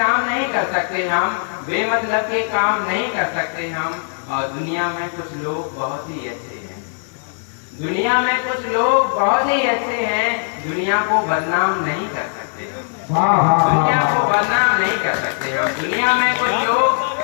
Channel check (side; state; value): right; silent; 66 dB below the other